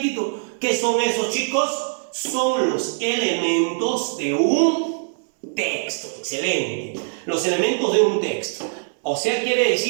título. ¿Qué son esos, chicos? Son los elementos de un texto. Excelente. Los elementos de un texto. O sea, quiere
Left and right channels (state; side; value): silent; left; digital silence